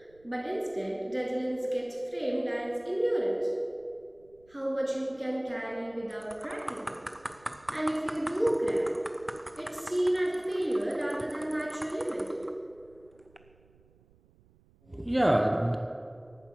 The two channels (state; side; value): noise; right; rumble, 29 dB below the sound